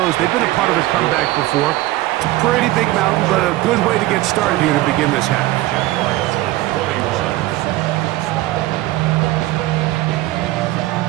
they've been a part of a comeback before. It's a pretty big mountain, but a good way to get started here to begin this half.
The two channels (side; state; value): left; quieter; 17.3 dB